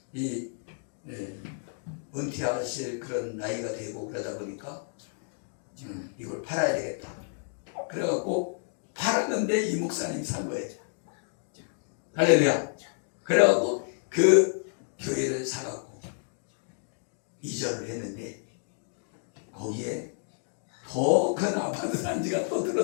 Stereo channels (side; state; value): right; silent; 58 dB below the other